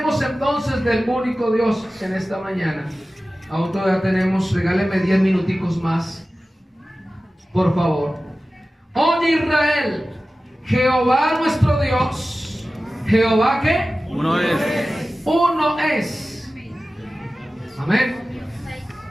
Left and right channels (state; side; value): normal; both; correlation 0.96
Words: entonces del único Dios en esta mañana. Aún todavía tenemos, regáleme 10 minuticos más, por favor. Oye Israel, Jehová nuestro Dios. ¿Jehová qué? Uno es. Uno es. Amén.